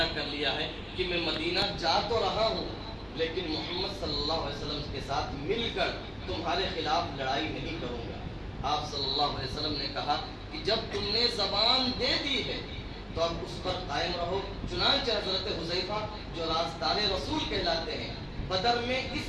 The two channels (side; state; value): both; identical; correlation 1.00